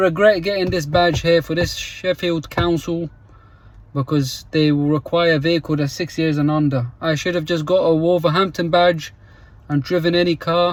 getting this badge here for this Sheffield Council, because they will require a vehicle that's 6 years and under. I should have just got a Wolverhampton badge and driven any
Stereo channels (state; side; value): identical; both; correlation 1.00